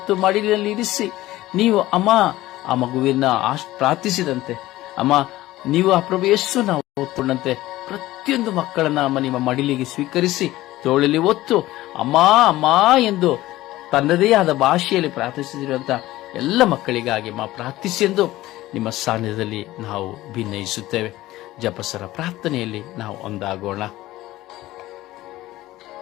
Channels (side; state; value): right; quieter; 16.6 dB